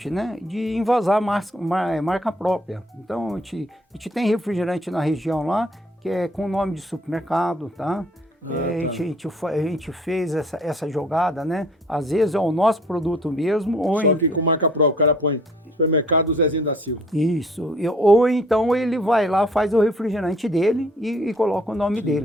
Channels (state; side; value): normal; both; correlation 0.58